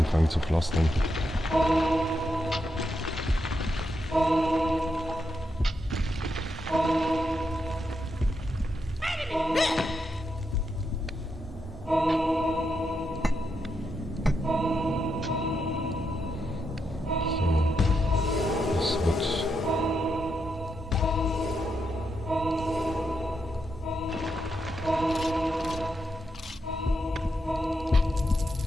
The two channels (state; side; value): normal; both; correlation 0.83